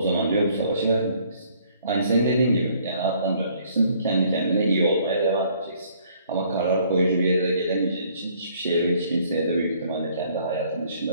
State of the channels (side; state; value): both; inverted; correlation -0.61